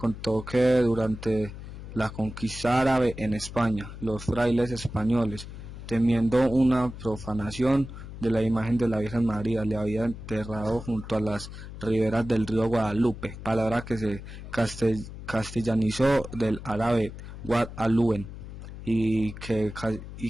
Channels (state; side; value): noise; left; hum, 12 dB below the sound